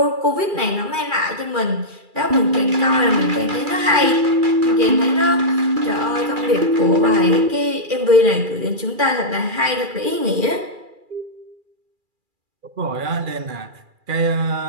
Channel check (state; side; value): late; left; 2.3 ms